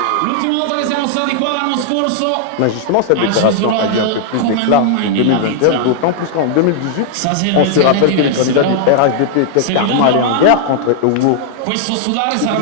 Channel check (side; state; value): both; different; correlation -0.01